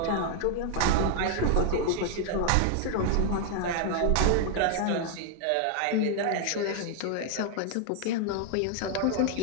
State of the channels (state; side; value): different; both; correlation 0.00